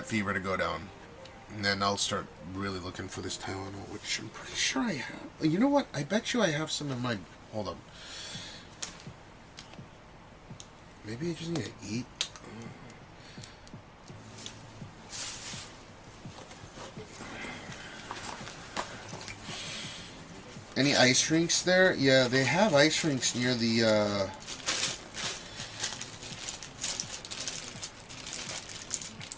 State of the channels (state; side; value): identical; both; correlation 1.00